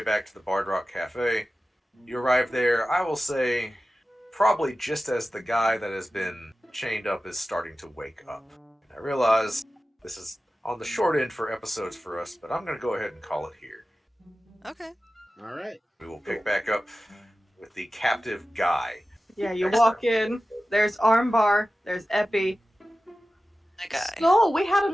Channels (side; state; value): both; normal; correlation 0.95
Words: back to the Bard Rock Cafe. You arrive there, I will say, probably just as the guy that has been chained up is starting to wake up. And I realize this is on the short end for episodes for us, but I'm going to go ahead and call it here. Okay. All right. We will pick back up with the captive guy. Yeah, you walk in. There's Armbar. There's Epi. That guy. So we had